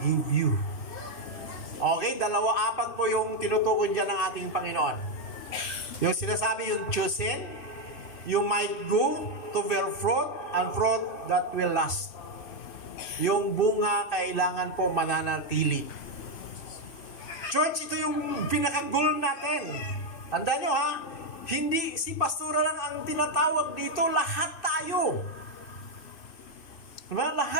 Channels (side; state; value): right; late; 2.6 ms